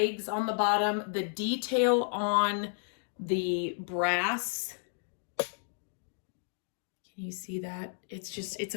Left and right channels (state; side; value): silent; right; digital silence